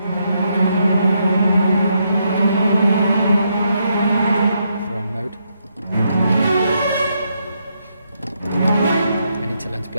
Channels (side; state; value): both; inverted; correlation -0.78